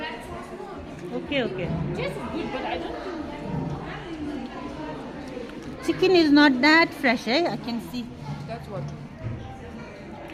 Okay. Just good, but I don't think. Chicken is not that fresh, eh? I can see. That's what.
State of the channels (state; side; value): identical; both; correlation 1.00